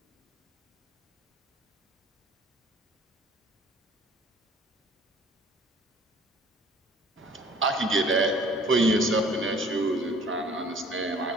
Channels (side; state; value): both; normal; correlation 0.53